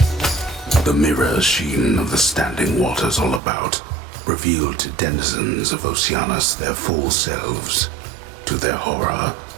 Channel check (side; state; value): left; drops out; at 3.4 s